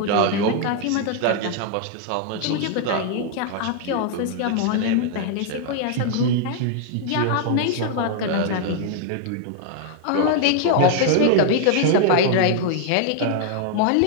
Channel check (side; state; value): both; different; correlation 0.00